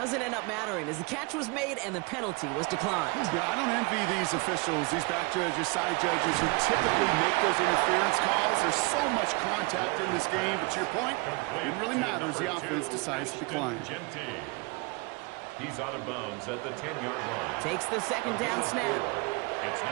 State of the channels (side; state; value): left; quieter; 28.4 dB